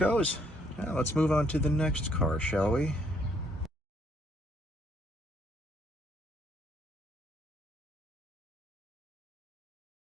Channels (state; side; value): normal; both; correlation 0.68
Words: Now let's move on to the next car, shall we?